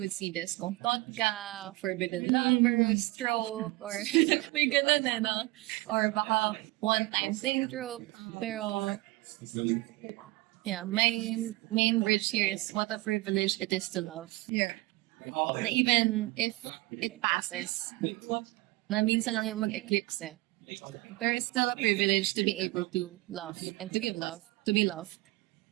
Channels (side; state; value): left; quieter; 20.9 dB